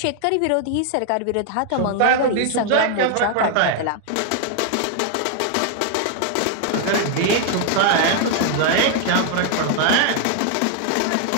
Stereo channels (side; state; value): both; different; correlation 0.00